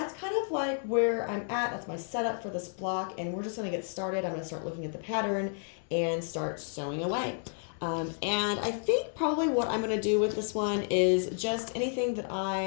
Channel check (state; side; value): silent; right; 57 dB below the other